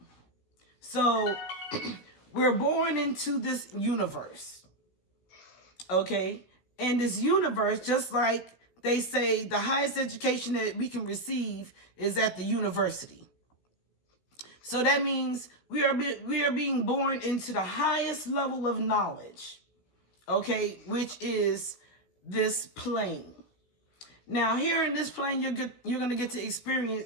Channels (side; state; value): right; late; 16 ms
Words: So we're born into this universe, okay? And this universe, just like they say, the highest education that we can receive is at the university. So that means we are being born into the highest level of knowledge, okay, which is this plane. Now, here in this plane, you're going to get to